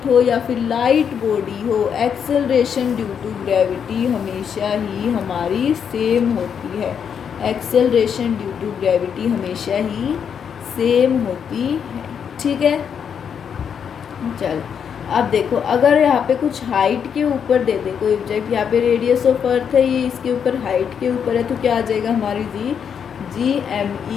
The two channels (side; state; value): right; quieter; 7.5 dB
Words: हो या फिर लाइट बॉडी हो, एक्सेलरेशन ड्यू टू ग्रेविटी हमेशा ही हमारी सेम होती है, एक्सेलरेशन ड्यू टू ग्रेविटी हमेशा ही सेम होती है। ठीक है, चल अब देखो अगर यहाँ पे कुछ हाइट के ऊपर दे दे कोई ऑब्जेक्ट, यहाँ पे रेडियस ऑफ अर्थ है, ये इसके ऊपर हाइट के ऊपर है, तो क्या आ जाएगा हमारी G M